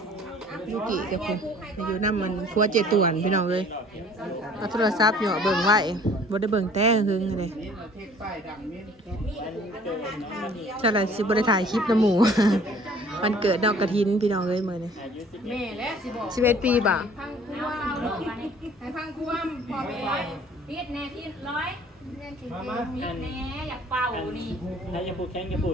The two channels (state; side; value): normal; both; correlation 0.53